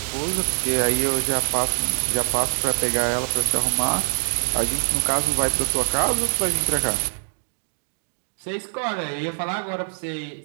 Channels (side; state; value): left; silent; digital silence